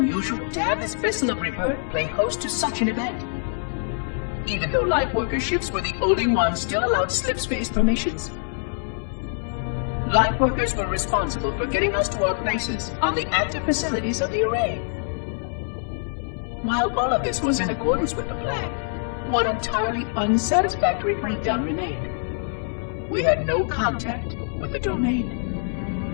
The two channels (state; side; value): silent; right; 62 dB below the other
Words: to have this vessel of rebirth play host to such an event. Even though Lightworker ships were the only ones still allowed slip-space formations, Lightworkers were responsible for getting us to our places on the active facilities of the array. While all of this was in accordance with the plan, one entirely unsatisfactory breakdown remained. We had no contact with the domain.